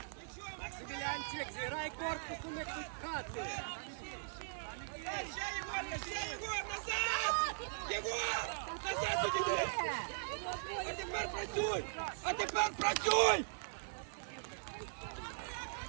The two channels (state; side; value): silent; left; 51 dB below the other